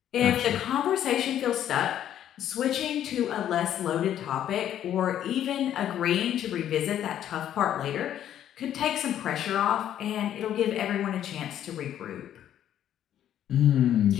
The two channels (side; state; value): right; quieter; 10.8 dB